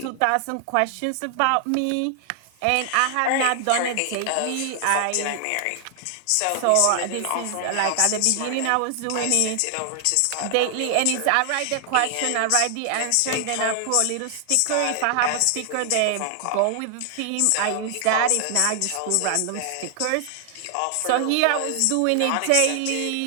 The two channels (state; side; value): different; both; correlation 0.00